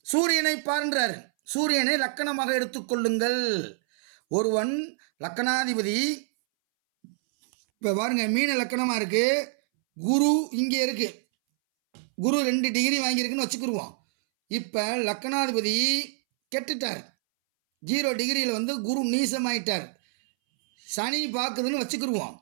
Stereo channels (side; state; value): left; silent; 60 dB below the other